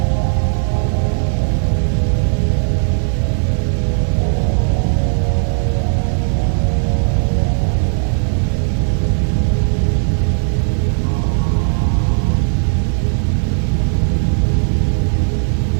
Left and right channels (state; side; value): silent; left; 57 dB below the other